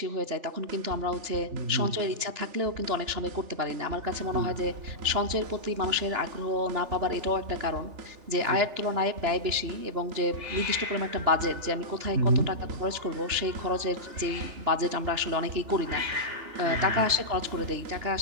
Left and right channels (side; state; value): left; late; 3.4 ms